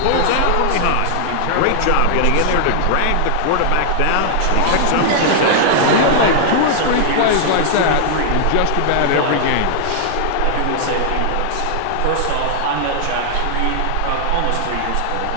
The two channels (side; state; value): both; different; correlation -0.01